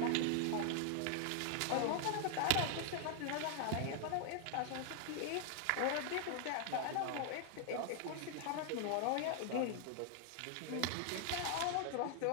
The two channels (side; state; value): both; different; correlation 0.00